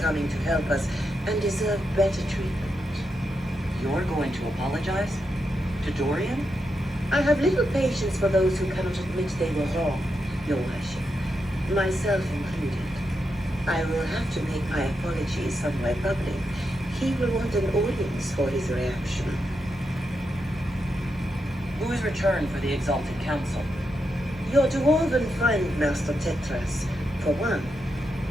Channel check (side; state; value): both; normal; correlation 0.85